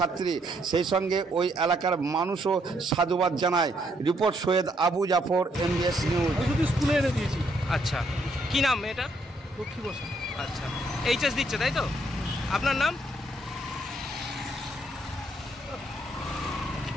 সেই সঙ্গে ওই এলাকার মানুষও সাধুবাদ জানায়। Report Syed Abu Jafar, MBS news. স্কুলে এনে দিয়েছি। আচ্ছা, কি নাম মেয়েটার? লক্ষ্মী বসাক। আচ্ছা, এইচএস দিচ্ছে তাই তো? আপনার নাম?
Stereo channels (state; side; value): normal; both; correlation 0.72